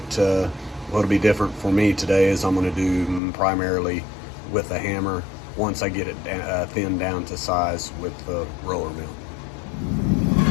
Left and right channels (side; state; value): right; drops out; at 3.2 s